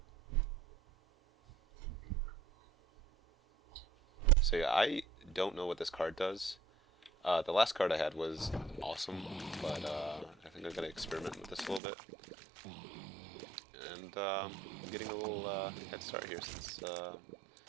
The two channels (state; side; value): drops out; left; at 11.8 s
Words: So yeah, I don't know what this card does. The last card I had was awesome, but I think I'm gonna experiment with this a little bit. And I'm getting a little head start here since the